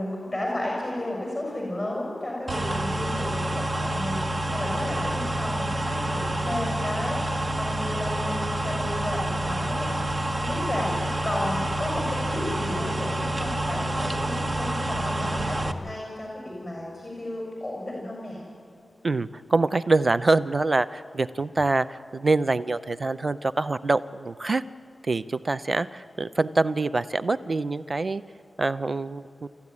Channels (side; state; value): both; normal; correlation 0.94